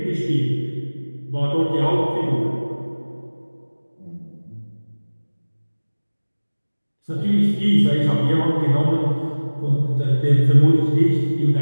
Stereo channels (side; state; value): both; inverted; correlation -1.00